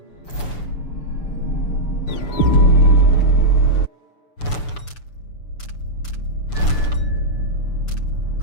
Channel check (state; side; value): late; right; 6.9 ms